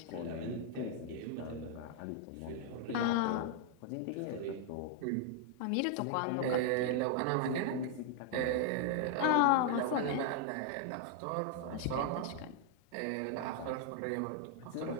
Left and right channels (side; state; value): both; different; correlation 0.00